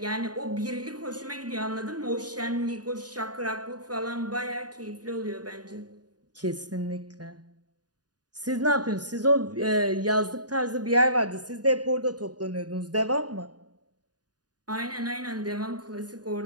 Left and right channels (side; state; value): left; late; 0.69 ms